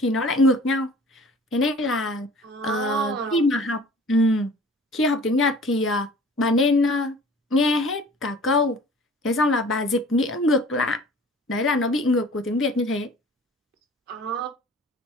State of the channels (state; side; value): normal; both; correlation 0.46